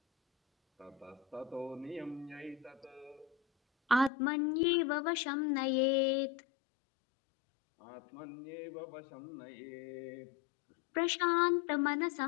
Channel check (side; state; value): right; drops out; at 4.1 s